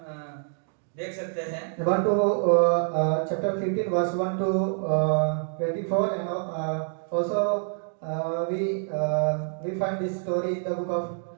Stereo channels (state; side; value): silent; left; 56 dB below the other